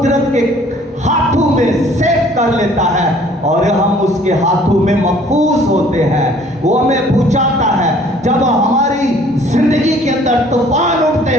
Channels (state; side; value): normal; both; correlation 0.56